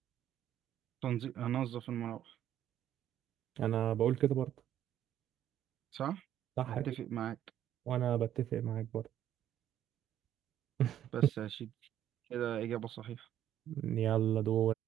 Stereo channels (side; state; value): left; quieter; 11.2 dB